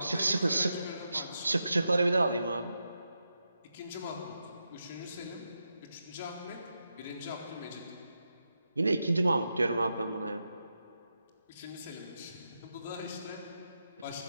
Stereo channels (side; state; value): both; inverted; correlation -0.86